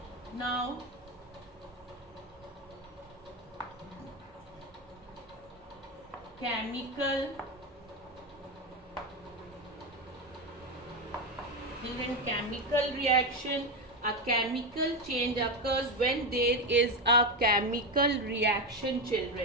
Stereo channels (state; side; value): normal; both; correlation 0.13